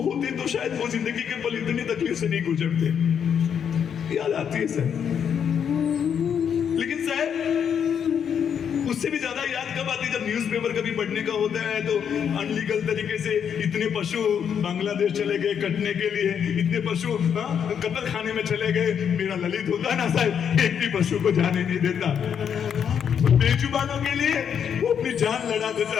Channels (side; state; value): right; quieter; 7.9 dB